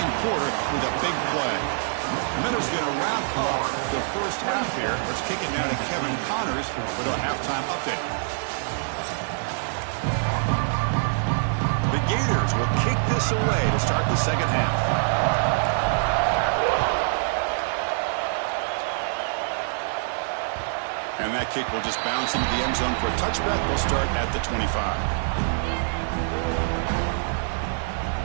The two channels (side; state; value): left; silent; digital silence